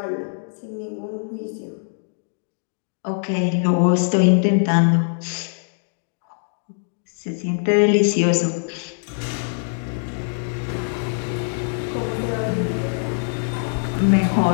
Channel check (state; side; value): silent; right; digital silence